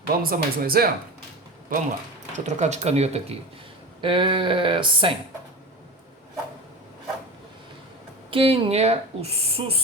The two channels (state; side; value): normal; both; correlation 0.29